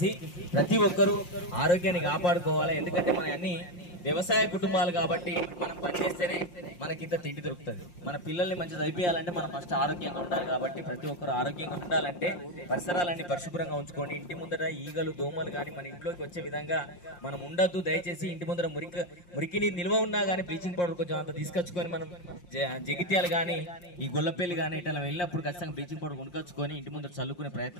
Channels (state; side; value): late; right; 5.6 ms